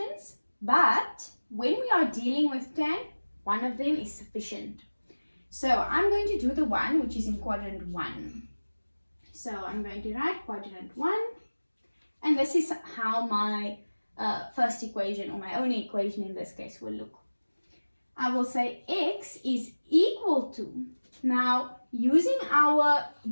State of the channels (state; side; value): inverted; both; correlation -1.00